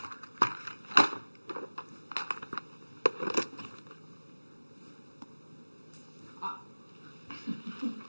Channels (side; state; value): both; inverted; correlation -1.00